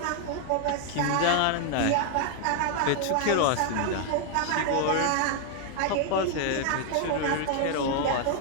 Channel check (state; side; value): different; both; correlation 0.00